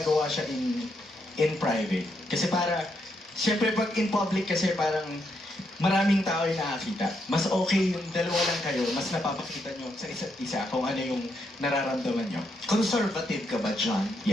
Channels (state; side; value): normal; both; correlation 0.79